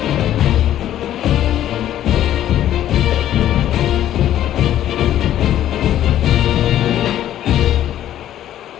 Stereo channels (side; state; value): right; quieter; 12.0 dB